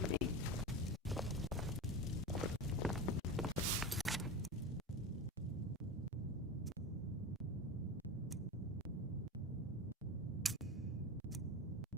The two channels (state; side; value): normal; both; correlation 0.25